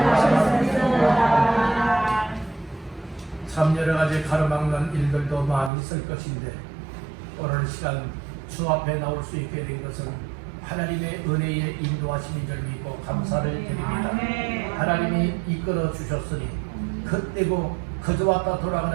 참 여러 가지 가로막는 일들도 많이 있을 것인데 오늘 시간 주 앞에 나올 수 있게 된 것은 하나님의 은혜의 인도하심인 줄 믿고 감사를 드립니다. 하나님이 이끌어 주셨으니 그때고 그저 왔다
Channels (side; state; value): left; drops out; at 5.7 s